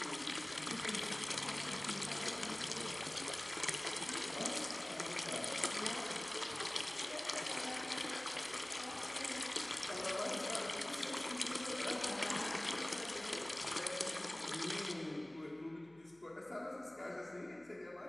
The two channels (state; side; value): noise; left; hum, 29 dB below the sound